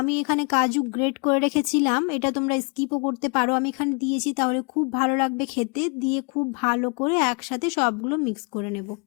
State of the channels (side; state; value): right; quieter; 34.8 dB